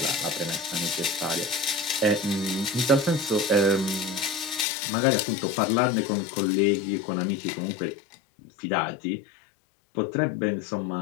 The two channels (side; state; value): right; drops out; at 4.7 s